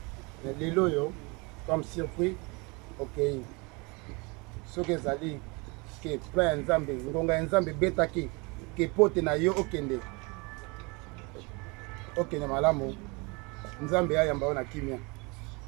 Mais les loyaux, comme surpris, ok. Ce que ça dit, que plein Nzambe, Ngonga Nzambe betaki, que pote na yo okende. Okende malamu, Nzambe ya yamba na kimia.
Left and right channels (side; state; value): left; quieter; 28.4 dB